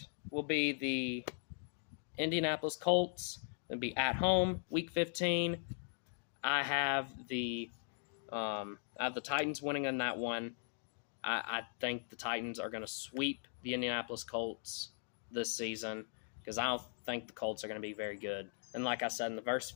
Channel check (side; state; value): right; silent; digital silence